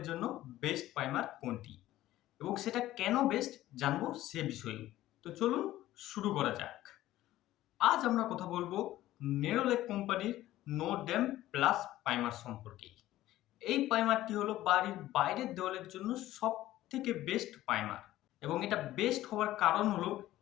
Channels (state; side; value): quieter; right; 14.9 dB